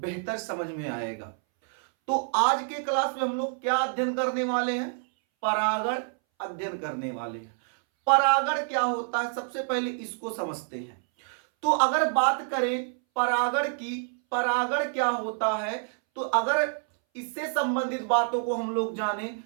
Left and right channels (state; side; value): silent; left; 60 dB below the other